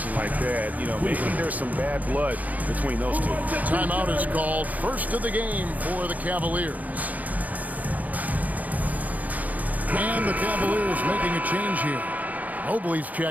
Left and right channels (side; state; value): left; late; 0.077 ms